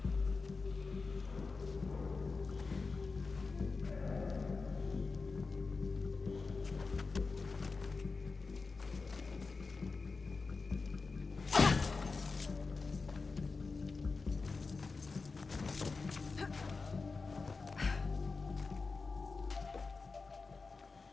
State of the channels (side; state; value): right; quieter; 4.2 dB